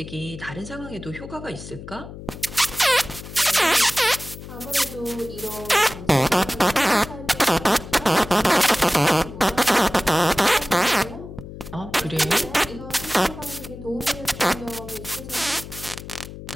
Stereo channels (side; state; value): left; noise; hum, 13 dB below the sound